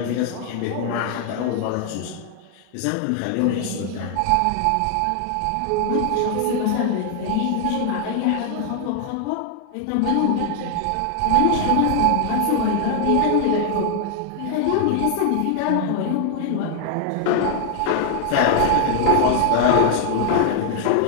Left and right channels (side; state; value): both; different; correlation 0.00